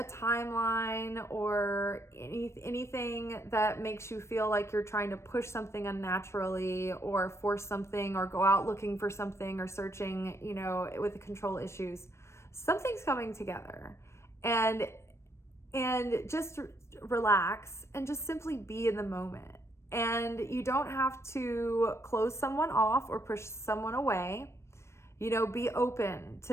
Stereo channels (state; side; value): late; right; 0.13 ms